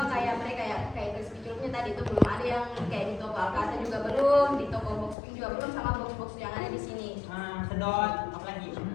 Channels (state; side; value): drops out; right; at 5.2 s